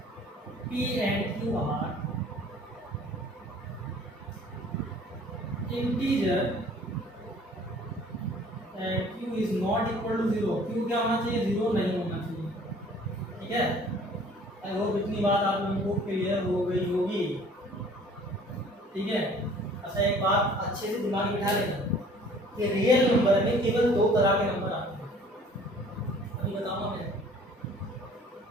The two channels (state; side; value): normal; both; correlation 0.52